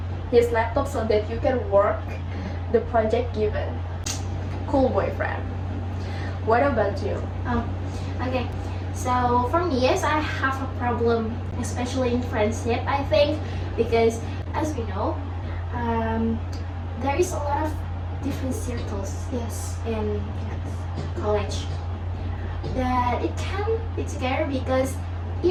his laptop so that you can work the project given. Cool boyfriend. What about you? Oh, okay. So for me, yes, I have a problem, especially in friendship, I think, because as we know, there is a lot of different circles, yes, in college, that it can be together because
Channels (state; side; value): identical; both; correlation 1.00